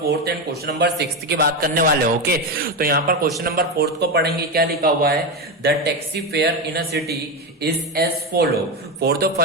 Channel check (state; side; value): normal; both; correlation 0.14